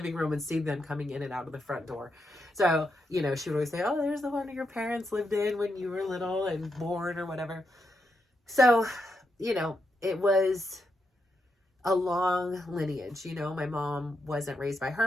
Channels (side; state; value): both; normal; correlation 0.83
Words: room and see them coming in and out of the front door. So, she would always say, oh, there's the one your parents lived in when you were little and born or whatever. So, it was a long lineage. My mom wasn't raised by